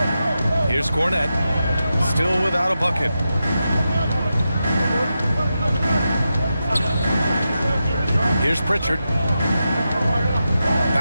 Here's Cornette. Still without a bucket. Here's Pritchard.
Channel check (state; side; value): inverted; both; correlation -0.89